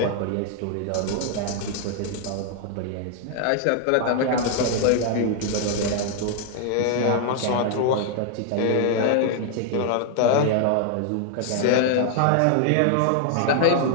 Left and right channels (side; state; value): both; different; correlation 0.00